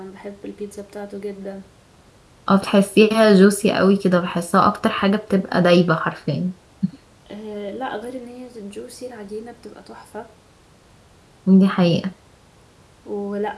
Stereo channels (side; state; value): both; identical; correlation 1.00